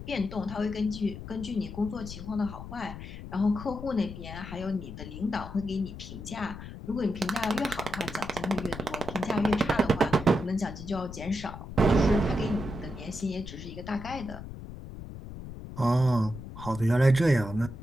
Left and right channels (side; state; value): left; noise; rumble, 11 dB below the sound